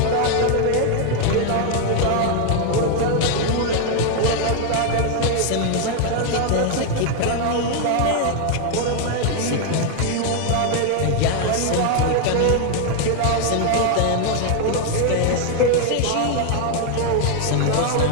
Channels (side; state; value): both; different; correlation 0.01